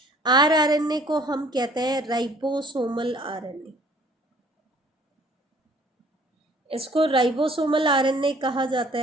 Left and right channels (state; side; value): normal; both; correlation 0.56